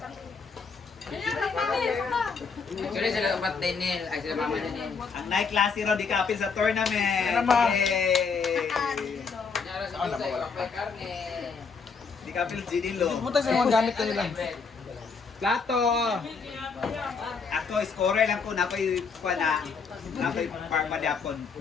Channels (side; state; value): right; quieter; 5.2 dB